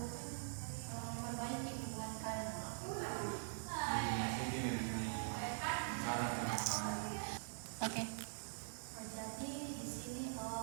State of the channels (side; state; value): left; silent; digital silence